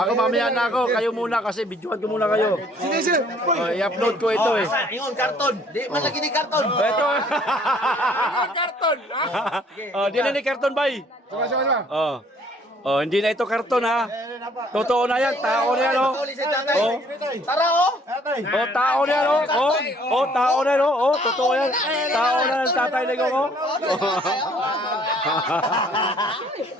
mamaya na ako, kayo muna kasi videoan ko muna kayo. I-upload ko ito, eh. Ingon, karton. Di man lagi ni karton. Ito. Karton. Di na ni karton, bay. Hindi na ito karton, ha. Totoo na yan, tao na yan, oh. Tara, oh. Tao na yan, oh. Tao na yan, oh. Totoo yan. Tao na yan, Tatay Digong, oh.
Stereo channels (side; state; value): both; normal; correlation 0.60